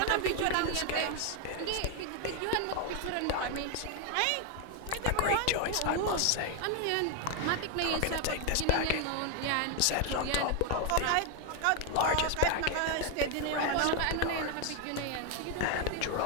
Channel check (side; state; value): both; different; correlation 0.01